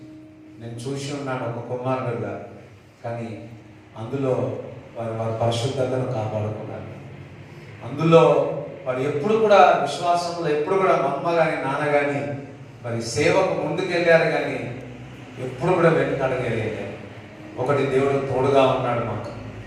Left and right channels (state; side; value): identical; both; correlation 1.00